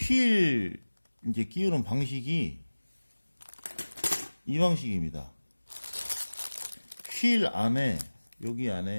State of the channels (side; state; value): both; inverted; correlation -1.00